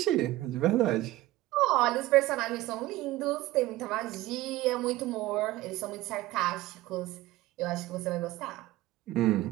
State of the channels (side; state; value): left; quieter; 17.2 dB